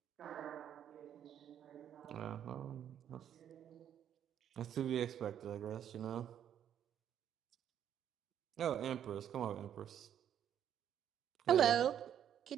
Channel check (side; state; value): left; quieter; 9.7 dB